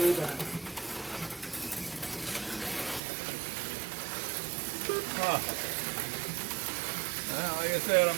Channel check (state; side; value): drops out; left; at 3.0 s